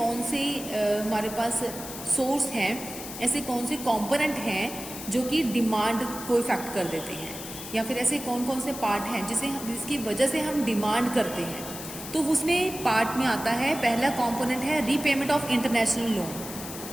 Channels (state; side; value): noise; left; hiss, 10 dB below the sound